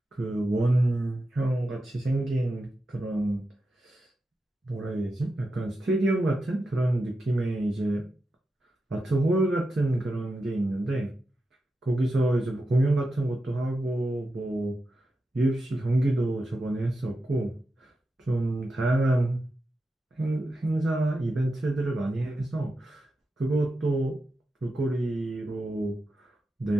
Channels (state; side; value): normal; both; correlation 0.89